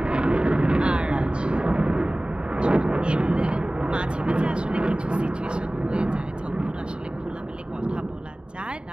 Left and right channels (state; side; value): late; left; 0.051 ms